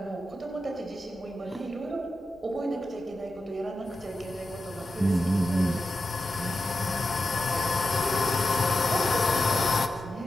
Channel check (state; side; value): normal; both; correlation 0.90